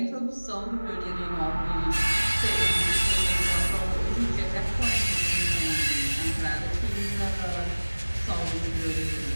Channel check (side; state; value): both; inverted; correlation -1.00